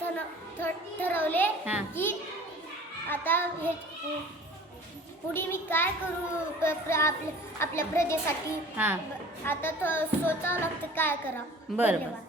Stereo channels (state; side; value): normal; both; correlation 0.45